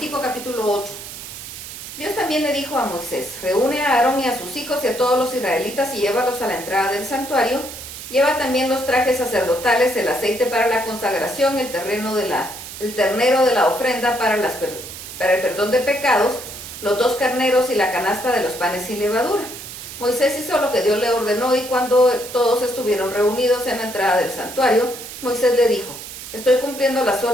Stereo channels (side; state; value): right; noise; hiss, 11 dB below the sound